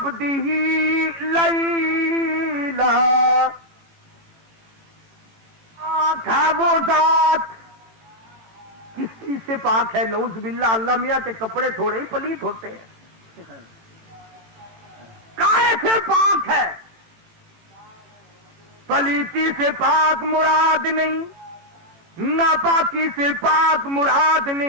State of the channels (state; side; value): late; left; 18 ms